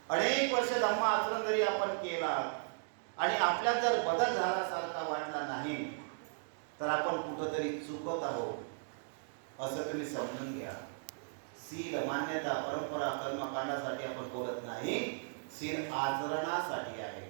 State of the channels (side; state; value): left; silent; digital silence